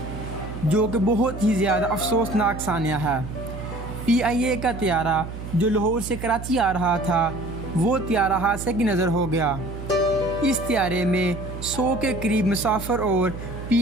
جو کہ بہت ہی زیادہ افسوسناک ثانیہ ہے۔ PIA کا طیارہ جو لاہور سے کراچی آ رہا تھا، وہ طیارہ حادثے کی نظر ہو گیا۔ اس طیارے میں 100 کے قریب مسافر اور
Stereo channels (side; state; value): right; noise; hum, 9 dB below the sound